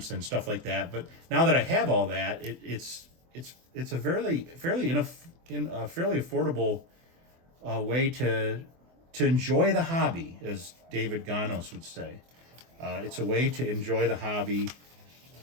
and stuff like that. But now that I have all that, it's a fairly affordable way to enjoy the hobby, as David Ganos would say. It's a way to enjoy the hobby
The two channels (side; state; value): left; late; 24 ms